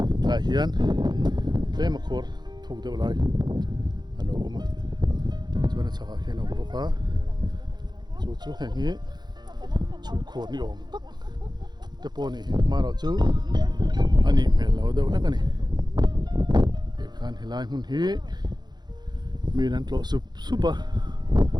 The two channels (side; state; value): left; late; 0.21 ms